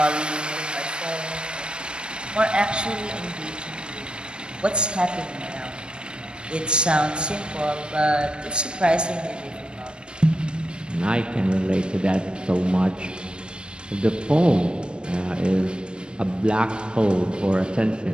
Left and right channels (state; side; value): late; left; 0.054 ms